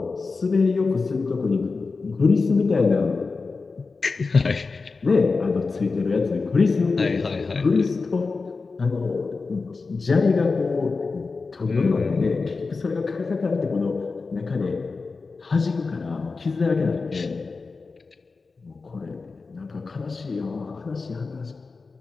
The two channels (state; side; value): quieter; right; 4.2 dB